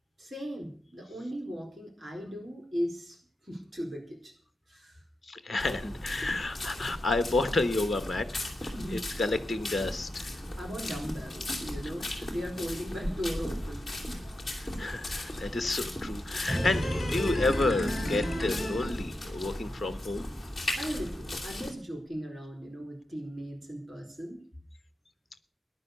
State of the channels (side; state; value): both; normal; correlation 0.88